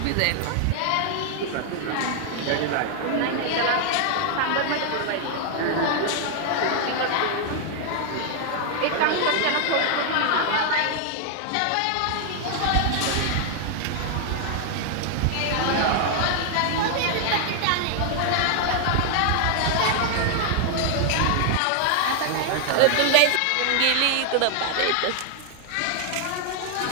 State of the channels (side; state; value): both; different; correlation 0.00